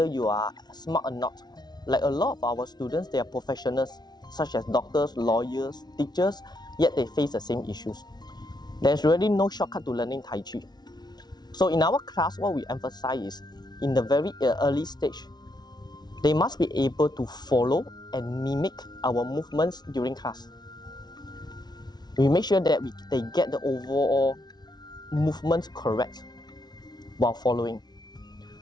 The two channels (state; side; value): late; right; 0.20 ms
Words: you are smart or not. Like a lot of our students, they are professionals such as doctors, lawyers, teachers, yet they face the same issues. There's really no shortcut to learning Tai Chi. So in our class, what we emphasize is in the very early stage, they must be able to follow and mimic our movements during class. We make sure that they get the overall movements correct while following.